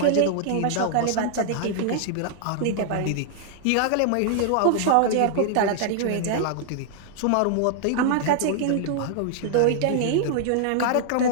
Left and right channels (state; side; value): different; both; correlation 0.00